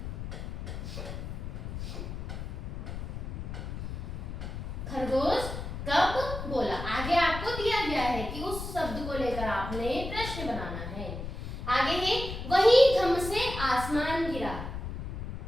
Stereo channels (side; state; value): left; noise; rumble, 6 dB below the sound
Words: खरगोश कब बोला। आगे आपको दिया गया है कि उस शब्द को लेकर आपने प्रश्न बनाना है। आगे है वही धम से आसमान गिरा।